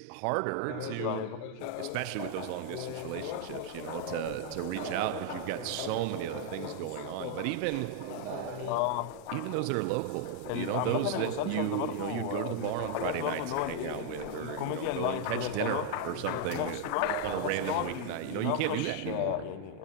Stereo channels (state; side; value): different; both; correlation 0.00